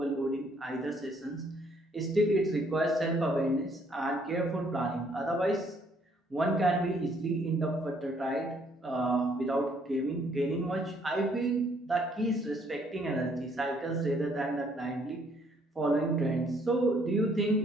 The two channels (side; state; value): both; normal; correlation 0.66